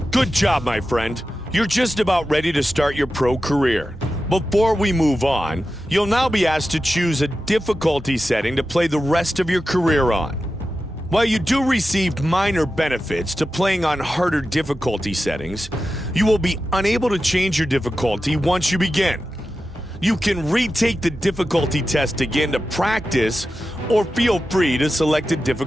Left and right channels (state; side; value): normal; both; correlation 0.92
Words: good job, my friend. You're just about ready to start your pro career. Before we move on, you'll now be asked to choose a difficulty setting to play the rest of your career on. While you do receive minor benefits to playing on harder difficulty settings, you will be unable to change your difficulty once you begin. You can retake the difficulty test again to practice, or feel free to select a